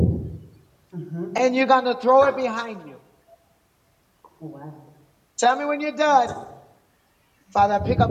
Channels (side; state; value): both; identical; correlation 1.00